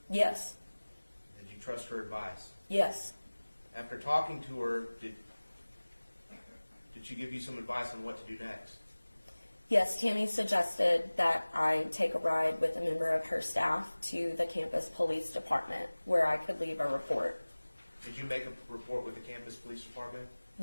Yes. Did you trust her advice? Yes. After talking to her, did she give you some advice on what to do next? Yes, Tammy suggested that I take a ride with a member of her staff to the campus police department where I could leave a report. Did you make a report with the campus police department?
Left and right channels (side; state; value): both; inverted; correlation -1.00